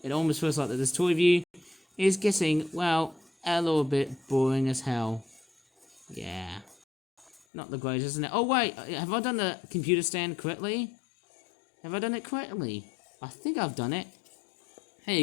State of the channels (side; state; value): right; drops out; at 7.4 s